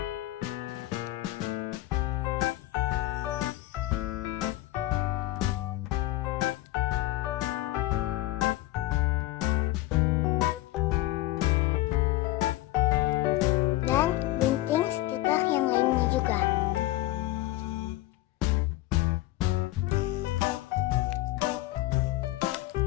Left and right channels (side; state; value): right; quieter; 16.9 dB